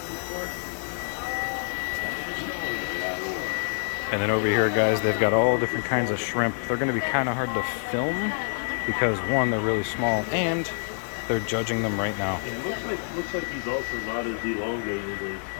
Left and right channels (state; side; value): silent; right; digital silence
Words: And then over here, guys, they've got all different kinds of shrimp. They're going to be kind of hard to film because, one, they're really small, and they're judging them right now. It looks like he's also not as elongated as